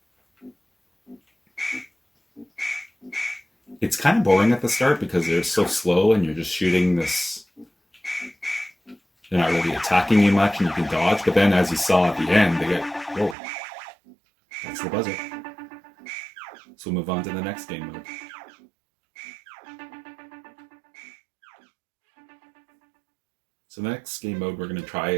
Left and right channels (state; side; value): drops out; left; at 13.4 s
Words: It's kind of boring at the start because they're so slow and you're just shooting this. They're not really attacking you much and you can dodge, but then as you saw at the end, they get, whoa, that's the buzzer. So we'll move on to the next game mode. So the next game mode we're going to try